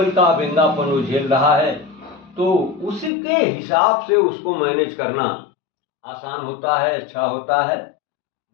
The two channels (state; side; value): drops out; right; at 3.1 s